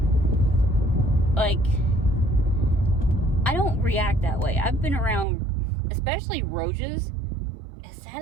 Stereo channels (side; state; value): left; drops out; at 5.2 s